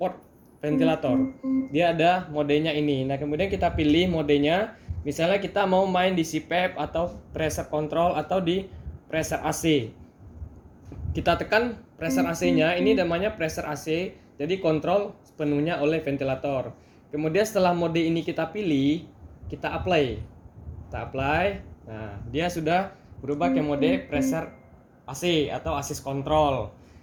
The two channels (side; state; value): both; identical; correlation 1.00